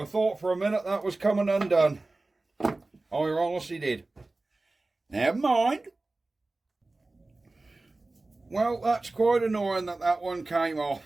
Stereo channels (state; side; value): quieter; left; 3.1 dB